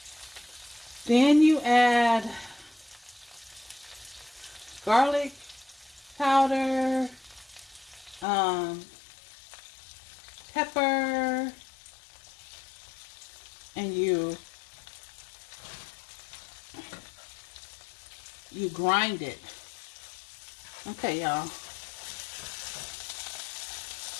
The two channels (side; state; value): right; drops out; at 8.2 s